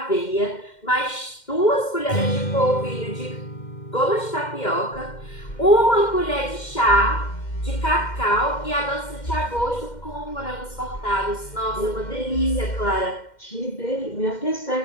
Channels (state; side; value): late; right; 2.1 ms